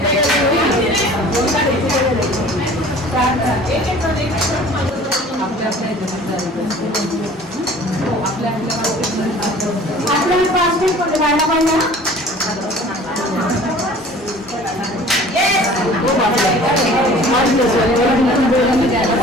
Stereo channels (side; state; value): both; normal; correlation 0.47